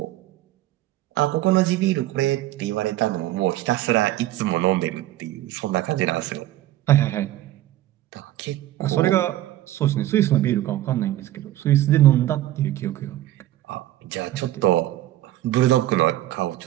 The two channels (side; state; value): left; quieter; 14.6 dB